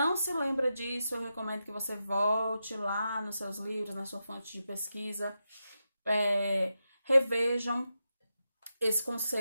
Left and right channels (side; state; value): both; inverted; correlation -0.88